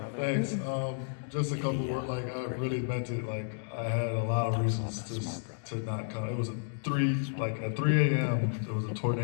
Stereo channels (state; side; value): silent; right; digital silence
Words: Thanks. Just a couple words. Like, I really meant it. Like, I had a lot of reasons to not come. It was at 3 a.m. There was a